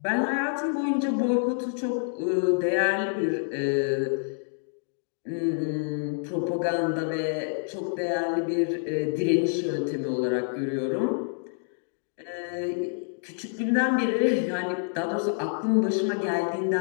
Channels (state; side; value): silent; right; digital silence